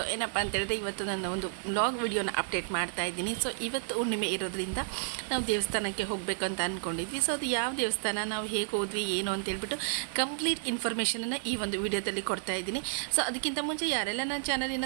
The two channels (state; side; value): silent; left; 57 dB below the other